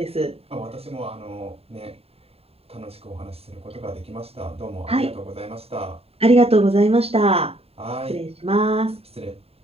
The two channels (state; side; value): late; left; 0.29 ms